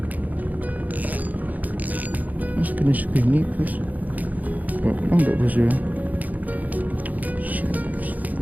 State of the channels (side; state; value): left; late; 0.079 ms